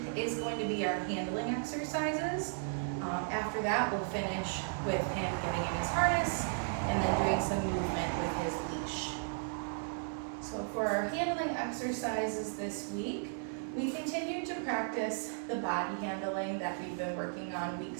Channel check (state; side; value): silent; left; digital silence